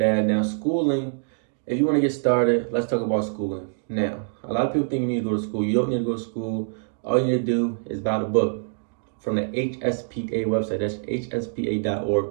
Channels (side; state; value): left; silent; digital silence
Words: Now, schooling, if you want to get started, let's talk about schooling. Now, a lot of people think you need to go to school. You don't need to go to school. All you need to do is buy the book from the HSPA website. That's